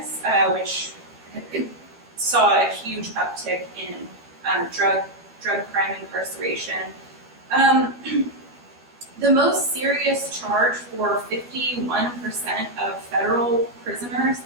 which saw a huge uptick in drug crime incarceration. The most serious charge for 51% of federal prisoners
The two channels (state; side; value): late; left; 12 ms